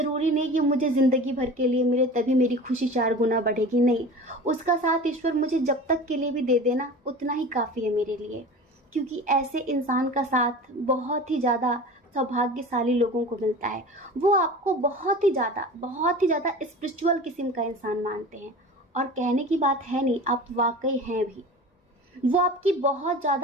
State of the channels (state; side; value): normal; both; correlation 0.36